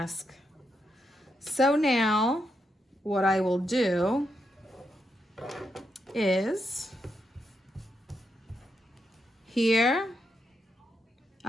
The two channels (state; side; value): normal; both; correlation 0.82